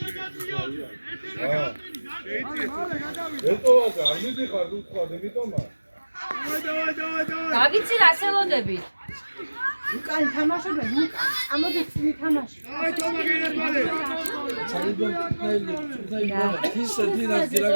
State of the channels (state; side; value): inverted; both; correlation -1.00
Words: გავიცი რა სელოდები. უკან თამაშობენ უკან ამოდის თამაში აი თომა გენერვალე!